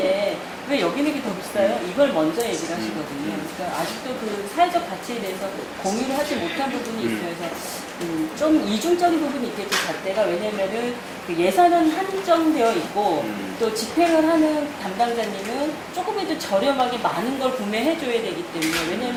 왜 여기는 게 더 비싸요? 이걸 먼저 얘기를 하시거든요. 그러니까 아직도 그 사회적 가치에 대해서 공유를 하지 못한 부분이 있어요. 그래서 좀 이중적인 부분이 있겠죠, 잣대가. 왜냐면은 그 예산은 한정되어 있고 또 집행을 하는 담당자님은 조금이라도 저렴하게 많은 걸 구매해줘야 되기 때문에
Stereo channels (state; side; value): identical; both; correlation 1.00